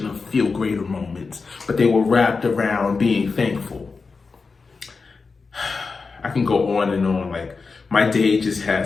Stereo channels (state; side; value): quieter; right; 4.5 dB